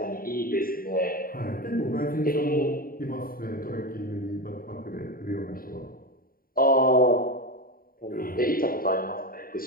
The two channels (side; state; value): right; late; 0.42 ms